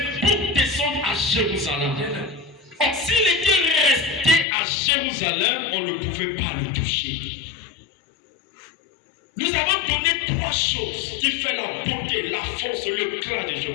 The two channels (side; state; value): right; drops out; at 4.5 s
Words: pour descendre à Jérusalem. Or, s'il était resté à Jérusalem, on ne pouvait pas le toucher. Nous avons donné trois choses qui font la beauté, la force, le clan de